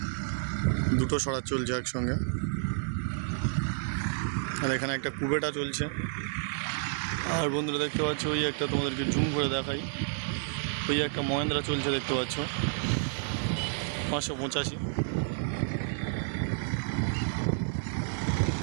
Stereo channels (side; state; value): left; silent; digital silence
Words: দুটো স্বরাজ চলছে একসঙ্গে। আর এখানে একটা কুবেটা চলছে। আর বন্ধুরা দেখতে পাচ্ছ ওই একটা তোমাদেরকে জুম করে দেখাই, ওই একটা মহেন্দ্রা চলছে দেখতে পাচ্ছ 585।